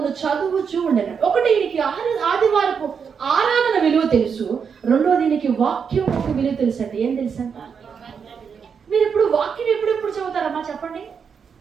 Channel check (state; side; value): quieter; left; 6.5 dB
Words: చదువుచూ ఉండెను. ఒకటి, ఈయనకి ఆదివారపు ఆరాధన విలువ తెలుసు. రెండోది, ఈయనకి వాక్యం ఒక విలువ తెలుసు అండి. ఏం తెలుసు అంట? మీరు ఇప్పుడు వాక్యం ఎప్పుడు చదువుతారమ్మా చెప్పండి?